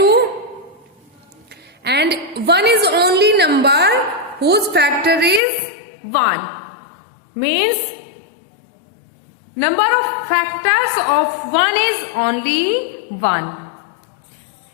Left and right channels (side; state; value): right; drops out; at 5.4 s